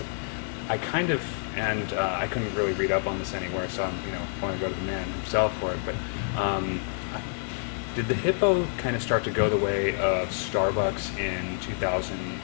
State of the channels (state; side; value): silent; right; digital silence